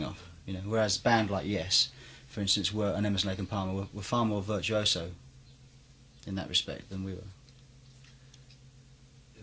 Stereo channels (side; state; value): both; identical; correlation 1.00